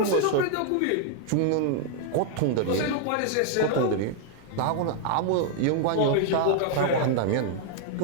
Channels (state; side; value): different; both; correlation 0.00